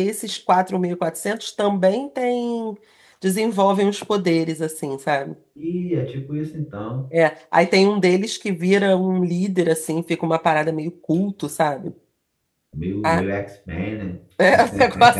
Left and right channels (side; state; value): both; identical; correlation 1.00